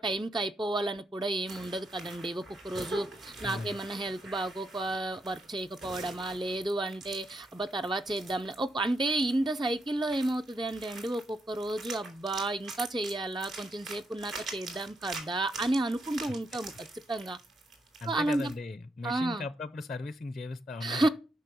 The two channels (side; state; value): both; normal; correlation 0.80